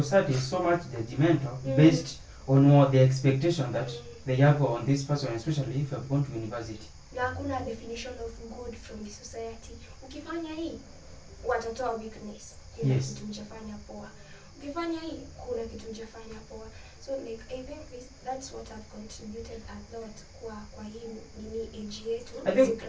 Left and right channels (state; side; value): identical; both; correlation 1.00